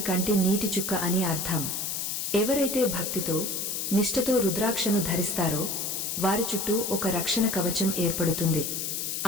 కంటి నీటి చుక్క అని అర్థం. ఎవరైతే భక్తితో నిష్ఠతో రుద్రాక్షను ధరిస్తారో వారి చుట్టూ ఒక రక్షణ కవచం ఏర్పడుతుంది.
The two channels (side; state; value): left; noise; hiss, 2 dB below the sound